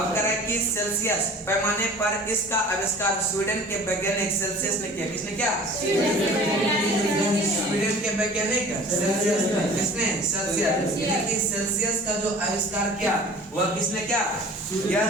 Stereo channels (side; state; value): both; normal; correlation 0.45